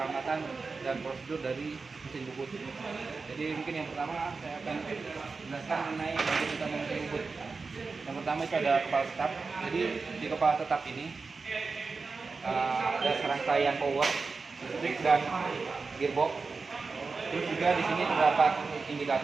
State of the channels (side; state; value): left; quieter; 4.4 dB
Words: dan prosedur dari mesin bubut. Jadi mungkin yang pertama saya akan jelaskan mengenai bagaimana kita memesan bubut. Yang pertama itu ada kepala tetap. Jadi di kepala tetap ini ada serangkaian power, listrik dan gearbox. Terus juga di sini terdapat